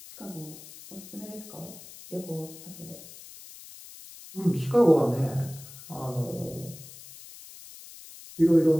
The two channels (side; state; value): left; noise; hiss, 17 dB below the sound